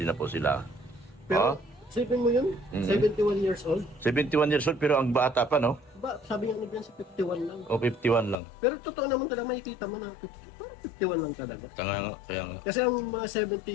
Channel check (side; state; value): right; drops out; at 8.3 s